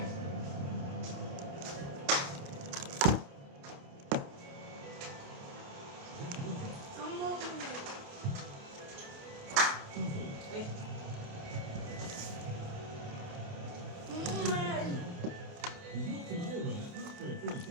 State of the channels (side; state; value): left; late; 28 ms